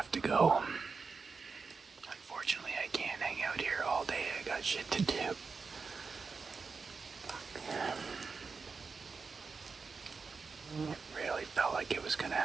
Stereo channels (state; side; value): quieter; left; 4.8 dB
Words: to go. Unfortunately, I can't hang out here all day. I got shit to do. It really felt like it was gonna